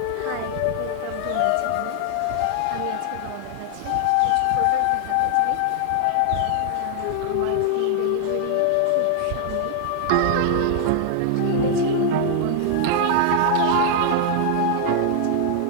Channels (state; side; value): different; both; correlation 0.00